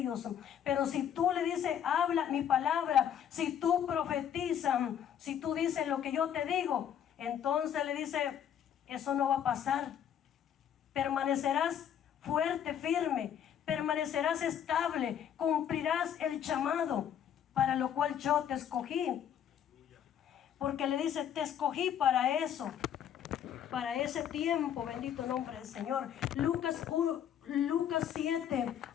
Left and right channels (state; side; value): quieter; right; 9.3 dB